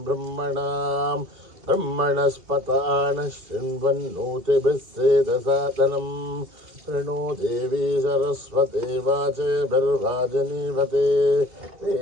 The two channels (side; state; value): left; late; 2.7 ms